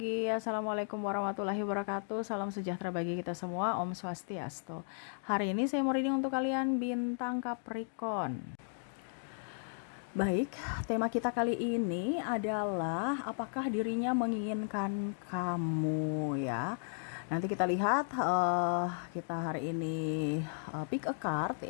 Assalamualaikum warahmatullahi wabarakatuh. Salam sejahtera bagi kita semua. Om Swastiastu. Hari ini saya mau reading untuk kalian bintang Capricorn. Baik, tema kita kali ini adalah apakah dirinya menginginkan kamu ya. Nanti kita lihat kita hari ini pick a card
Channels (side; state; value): right; silent; digital silence